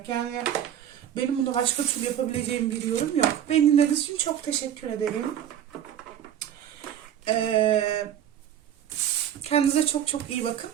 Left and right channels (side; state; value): left; quieter; 10.2 dB